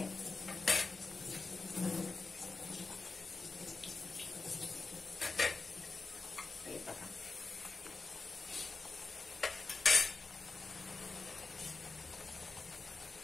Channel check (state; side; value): quieter; right; 3.9 dB